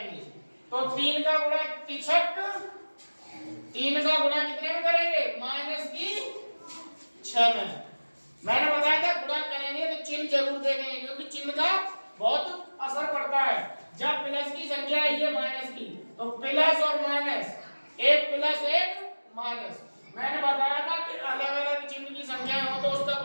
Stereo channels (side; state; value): both; inverted; correlation -1.00